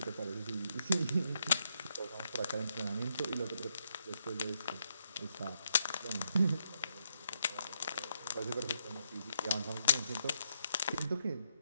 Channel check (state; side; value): inverted; both; correlation -0.77